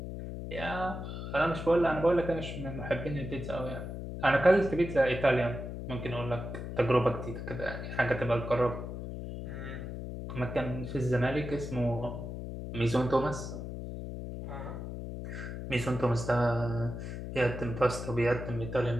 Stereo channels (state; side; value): noise; left; hum, 7 dB below the sound